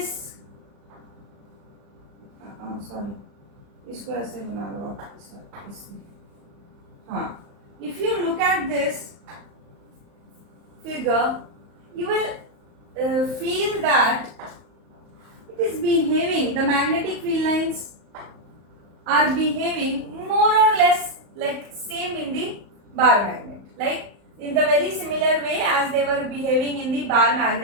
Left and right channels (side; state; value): left; late; 35 ms